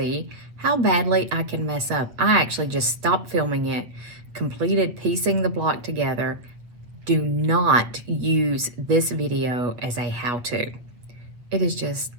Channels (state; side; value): late; left; 8.4 ms